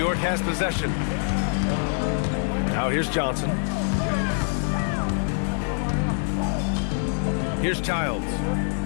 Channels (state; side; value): silent; right; 57 dB below the other